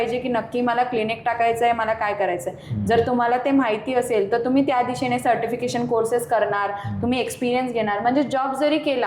की नक्की मला क्लिनिक टाकायचं आहे, मला काय करायचं आहे. जर तुम्हाला ते माहिती असेल तर तुम्ही त्या दिशेने सर्टिफिकेशन कोर्सेस करणार, तुम्ही एक्सपिरियन्स घेणार. म्हणजे जॉब जरी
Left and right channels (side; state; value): both; identical; correlation 1.00